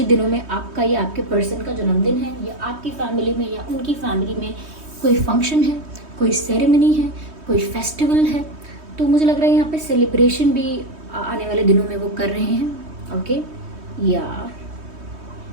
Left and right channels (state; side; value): late; left; 3.2 ms